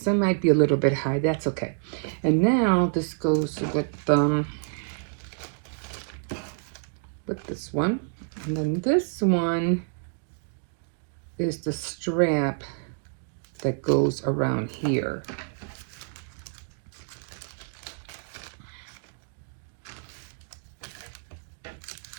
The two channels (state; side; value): silent; left; digital silence